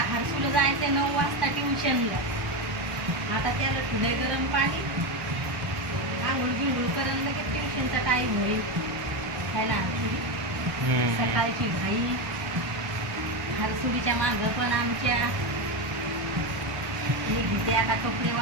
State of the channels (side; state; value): left; late; 1.2 ms